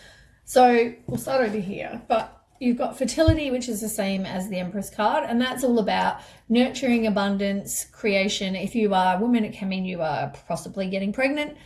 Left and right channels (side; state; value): both; identical; correlation 1.00